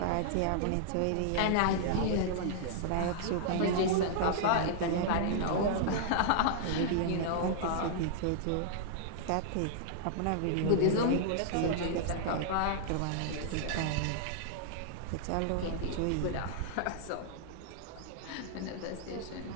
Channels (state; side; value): different; both; correlation -0.01